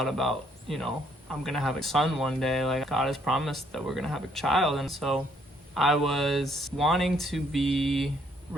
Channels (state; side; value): normal; both; correlation 0.67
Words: about, I'm gonna have a son one day. Like, God has promised that we're gonna have a child. And so I was wanting to be